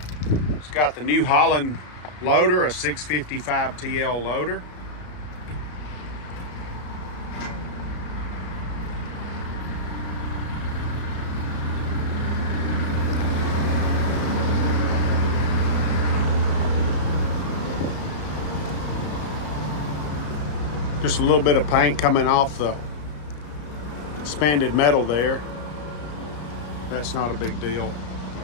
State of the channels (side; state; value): right; late; 33 ms